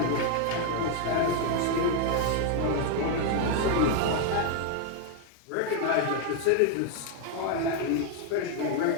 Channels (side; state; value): both; different; correlation 0.00